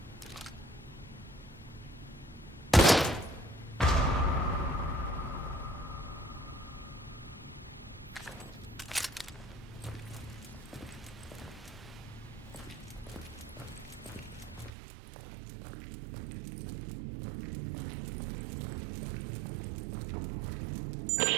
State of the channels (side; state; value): left; drops out; at 14.7 s